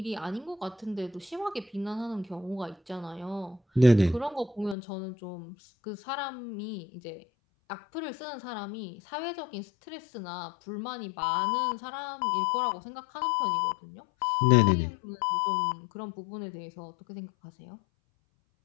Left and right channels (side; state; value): right; drops out; at 4.8 s